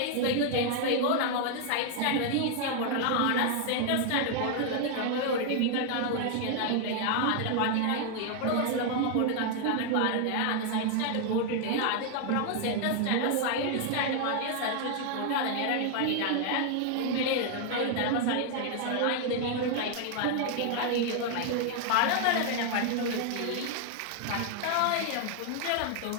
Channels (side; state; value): both; different; correlation 0.00